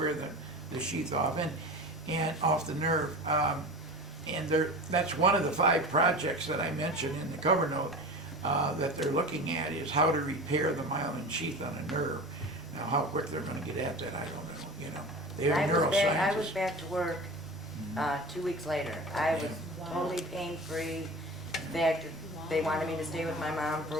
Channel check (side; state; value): both; normal; correlation 0.33